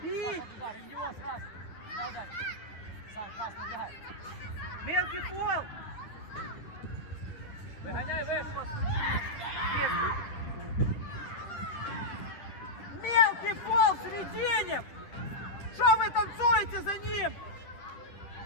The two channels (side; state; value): right; late; 10 ms